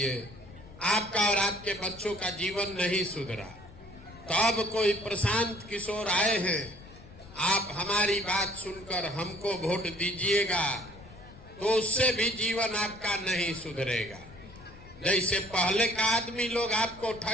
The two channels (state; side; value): noise; left; rumble, 19 dB below the sound